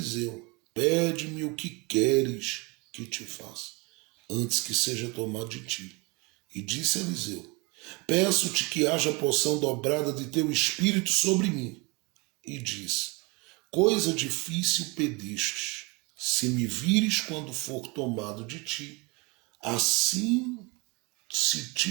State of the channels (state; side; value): quieter; left; 27.7 dB